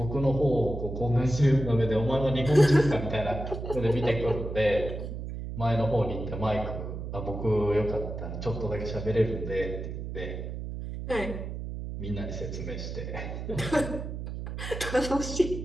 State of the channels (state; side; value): noise; right; hum, 7 dB below the sound